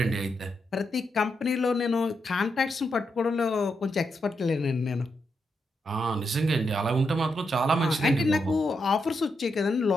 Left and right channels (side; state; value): both; normal; correlation 0.83